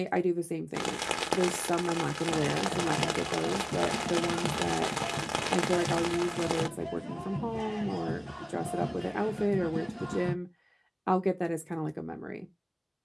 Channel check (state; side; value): identical; both; correlation 1.00